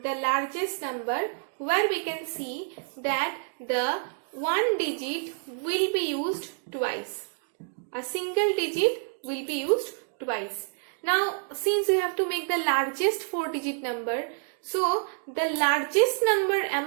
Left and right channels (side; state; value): left; silent; 59 dB below the other